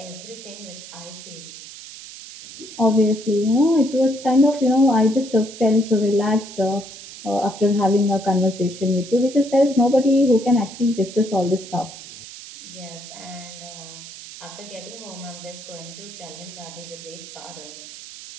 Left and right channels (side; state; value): right; noise; hiss, 15 dB below the sound